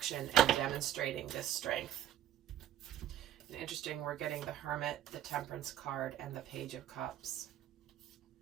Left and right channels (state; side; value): quieter; left; 11.6 dB